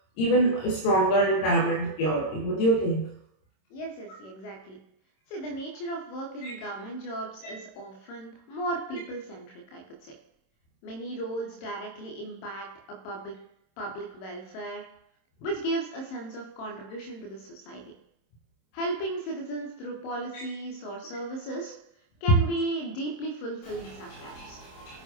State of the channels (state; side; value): late; right; 26 ms